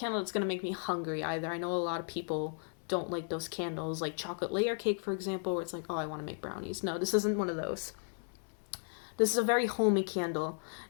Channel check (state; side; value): silent; right; 54 dB below the other